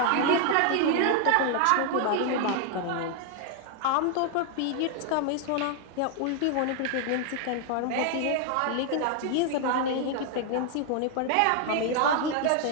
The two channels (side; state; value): both; different; correlation 0.00